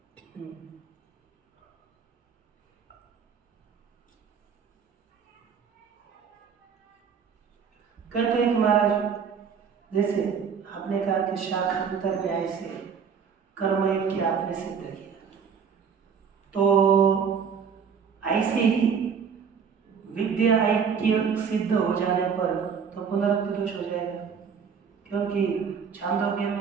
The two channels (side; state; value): left; quieter; 6.6 dB